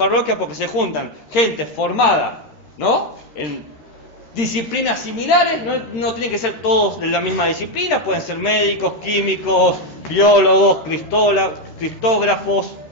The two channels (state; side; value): late; right; 13 ms